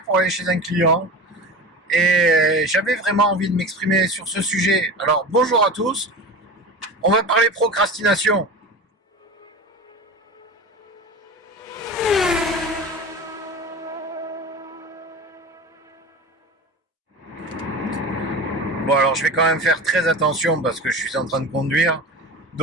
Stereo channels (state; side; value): normal; both; correlation 0.31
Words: pour aller chez un client et j'avais vraiment envie de m'exprimer sur ce sujet. Alors, bonjour à tous. On va parler procrastination. Bon, alors je vais quand même faire très attention parce que je suis en train de conduire.